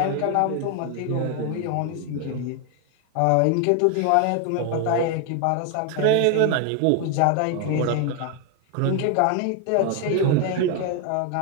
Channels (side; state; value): both; different; correlation 0.01